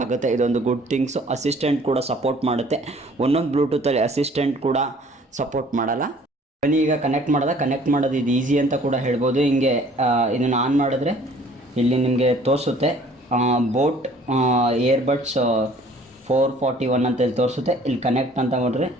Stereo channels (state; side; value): normal; both; correlation 0.55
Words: ಆಗುತ್ತೆ. ಇದೊಂದು ಗುಡ್ ಥಿಂಗ್ಸು. ಅಸಿಸ್ಟೆಂಟ್ ಕೂಡ ಸಪೋರ್ಟ್ ಮಾಡುತ್ತೆ. ಒಂದೊಂದು ಬ್ಲೂಟೂತಲ್ಲಿ ಅಸಿಸ್ಟೆಂಟ್ ಕೂಡ ಸಪೋರ್ಟ್ ಮಾಡಲ್ಲ. ಬನ್ನಿ ಈಗ ಕನೆಕ್ಟ್ ಮಾಡೋದು ಇದು ಈಸಿ ಅಂತ ಕೂಡ ಹೇಳ್ಬೋದು. ಹಿಂಗೆ ಇದನ್ನು ಆನ್ ಮಾಡಿದ್ರೆ ಇಲ್ಲಿ ನಿಮಗೆ ತೋರಿಸುತ್ತೆ ಬೋಟ್ ಏರ್ಬಡ್ಸ್ 441 ಅಂತ ಇಲ್ಲಿ ತೋರಿಸುತ್ತೆ. ಇಲ್ಲಿ ಕನೆಕ್ಟ್ ಅಂತ ನೋಡ್ರಿ,